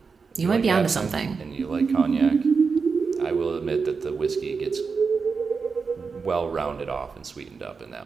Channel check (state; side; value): quieter; left; 5.1 dB